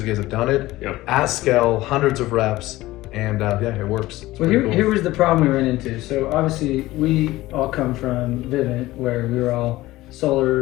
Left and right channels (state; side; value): quieter; right; 17.6 dB